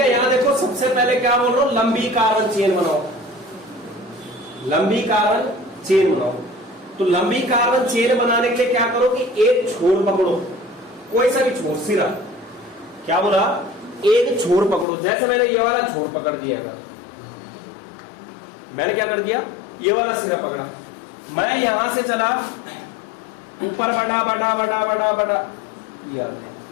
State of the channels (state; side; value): drops out; right; at 14.9 s